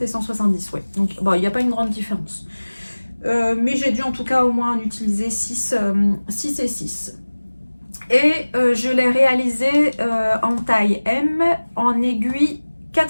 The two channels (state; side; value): inverted; both; correlation -1.00